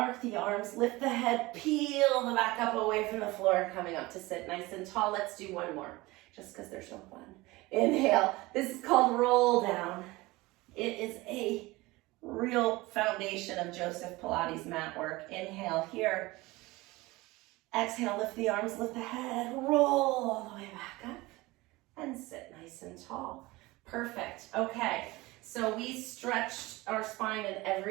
the arms, lift the head, peel the back up away from the floor, coming up to sit nice and tall. Let's do one more, just because they're so fun. Inhale. This is called roll down. It is a real foundation of Joseph Pilates mat work. Inhale here. Exhale, lift the arms, lift the head, roll all the way back up, and sit nice and tall. Perfect. Okay, so we stretched our spine in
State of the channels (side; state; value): left; quieter; 21.0 dB